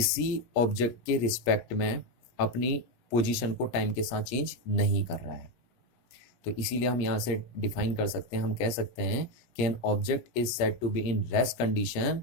ऑब्जेक्ट के रिस्पेक्ट में अपनी पोजीशन को टाइम के साथ चेंज नहीं कर रहा है। तो इसीलिए हम यहाँ से डिफाइन कर सकते हैं, हम कह सकते हैं कि an object is said to be in rest condition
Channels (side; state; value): right; late; 17 ms